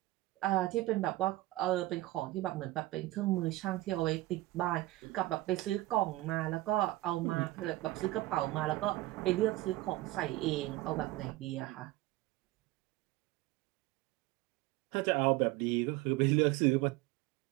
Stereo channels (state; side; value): quieter; left; 18.0 dB